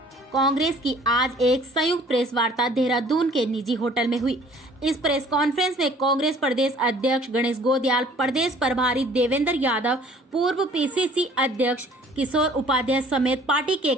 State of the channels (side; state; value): both; normal; correlation 0.53